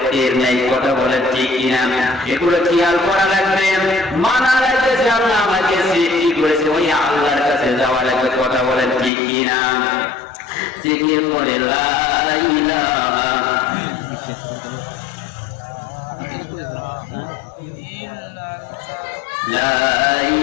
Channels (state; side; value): drops out; right; at 9.1 s